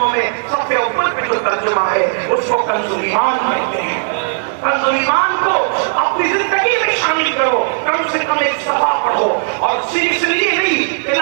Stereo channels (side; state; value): left; silent; digital silence